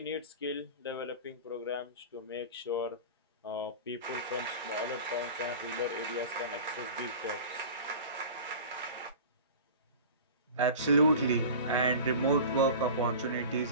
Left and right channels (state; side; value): inverted; both; correlation -0.36